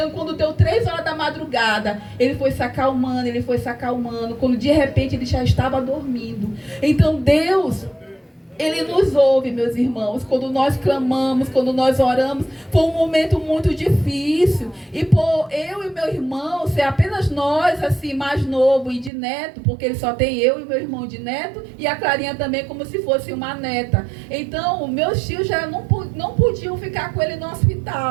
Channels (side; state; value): left; drops out; at 19.1 s